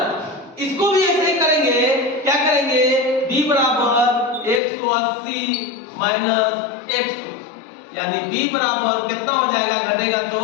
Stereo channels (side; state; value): right; drops out; at 4.6 s